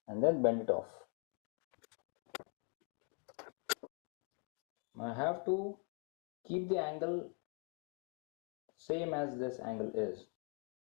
and then bend it off. I have to keep the angle same as this angle is.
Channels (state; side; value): quieter; right; 34.4 dB